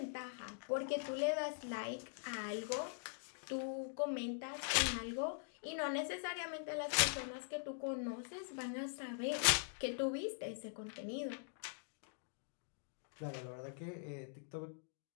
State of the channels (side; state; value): right; silent; digital silence